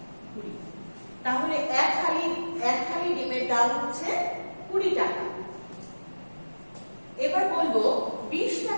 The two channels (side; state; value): both; inverted; correlation -1.00